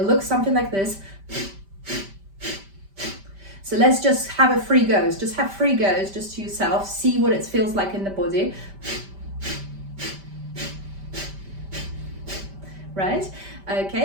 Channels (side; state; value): left; late; 5.1 ms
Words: looks something like this. So let's just have a 3 goes. Just have 3 goes just to yourself. See what it feels like in the body. Right?